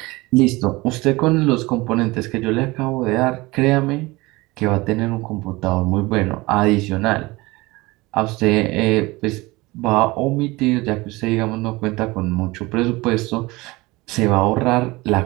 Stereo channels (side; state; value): left; quieter; 21.9 dB